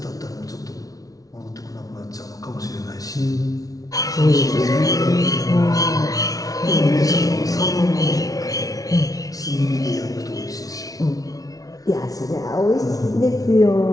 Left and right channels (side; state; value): right; late; 0.18 ms